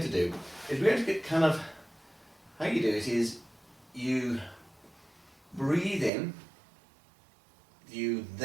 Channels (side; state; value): left; drops out; at 6.1 s